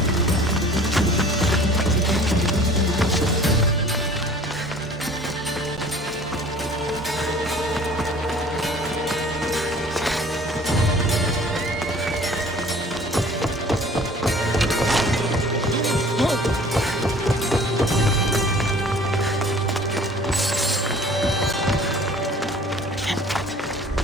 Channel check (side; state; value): both; normal; correlation 0.49